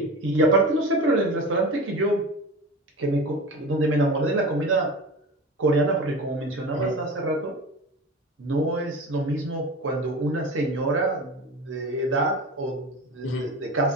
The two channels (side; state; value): both; normal; correlation 0.32